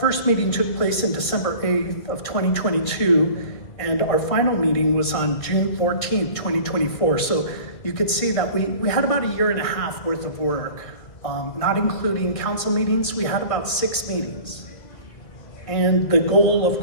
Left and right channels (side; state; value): right; late; 1.8 ms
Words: meeting took place in December 8th of 2022, and our final meeting was on June 14th, 2024. So you could see that we had about a year and a half worth of work. Not including council meetings, we had about 6 meetings. And the goal, of